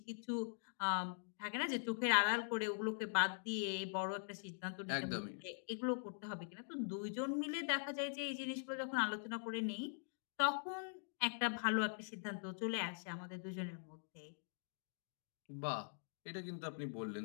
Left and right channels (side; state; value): right; silent; digital silence